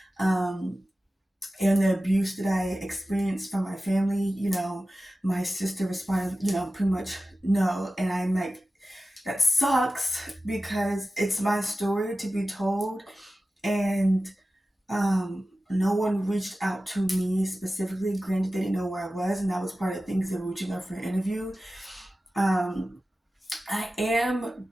um, and the abuse that I experienced from my family, my sister responded, pretty much no. And I'm like, that sucks because it's my story to be told. And no one reached out to me specifically. Granted, they didn't know where I was, and that was part of the things they were reaching out for an interview. Um, I am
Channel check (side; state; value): both; normal; correlation 0.95